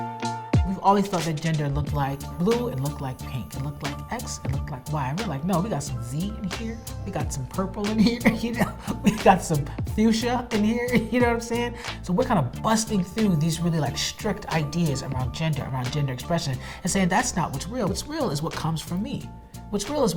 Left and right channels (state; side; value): identical; both; correlation 1.00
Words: We've always thought that gender looked like blue, it looked like pink, it looked like X, it looked like Y. And we're like, no, we got some Z in here, we got some purple in here, you know, we got some fuchsia in here, you know what I'm saying? So we're kind of busting through these really like strict ideas around gender expression, and saying that's not what's real. What's real is what comes from me. What's real is